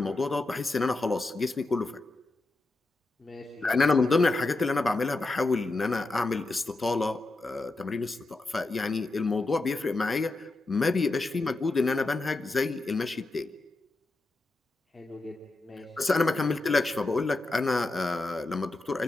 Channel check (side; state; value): right; quieter; 3.1 dB